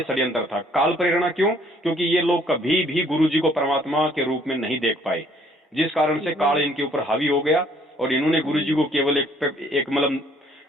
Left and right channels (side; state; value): both; normal; correlation 0.61